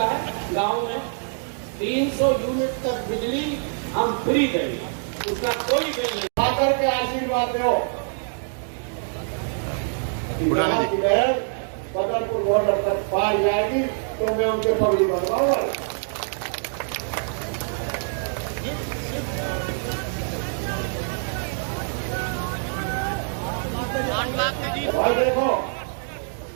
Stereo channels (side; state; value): left; silent; digital silence